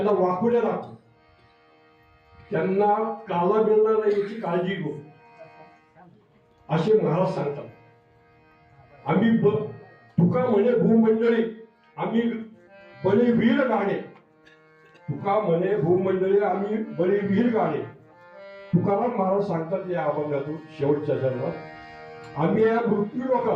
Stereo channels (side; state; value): both; identical; correlation 1.00